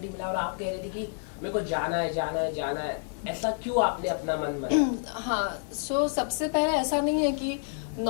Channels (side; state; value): right; silent; digital silence